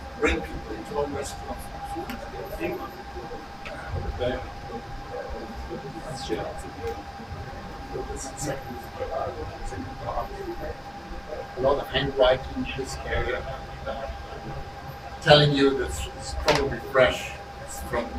bring people into our restaurants. A lot of handwriting in this area, telling you that it's probably fresh. It's from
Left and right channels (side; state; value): both; identical; correlation 1.00